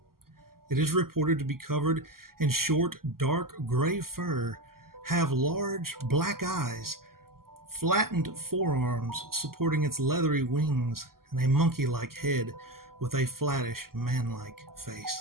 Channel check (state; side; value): late; left; 0.92 ms